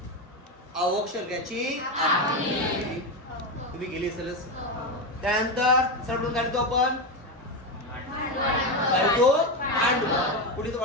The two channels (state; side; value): normal; both; correlation 0.13